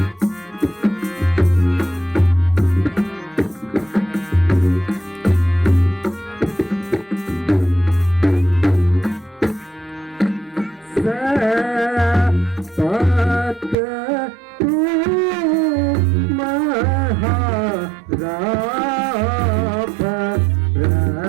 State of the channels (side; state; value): left; drops out; at 13.8 s